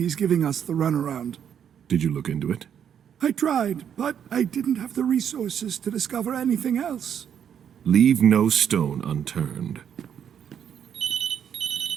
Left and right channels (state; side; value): quieter; left; 8.6 dB